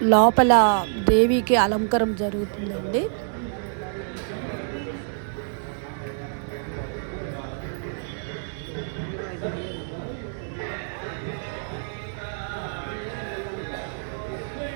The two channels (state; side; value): silent; left; digital silence